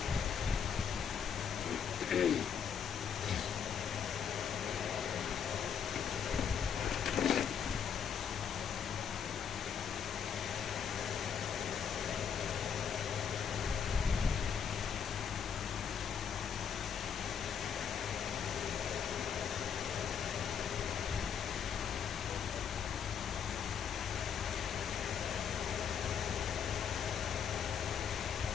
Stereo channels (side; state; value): right; quieter; 7.5 dB